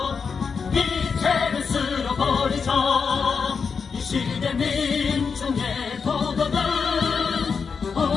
미체를 쓸어버리자. 이 시대 민중의 도전은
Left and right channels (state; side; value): quieter; right; 5.6 dB